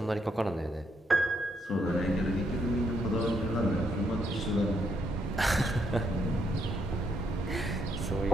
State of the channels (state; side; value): normal; both; correlation 0.75